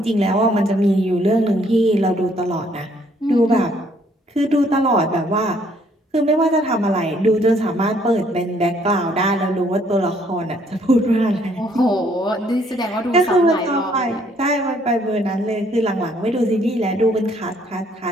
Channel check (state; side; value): normal; both; correlation 0.65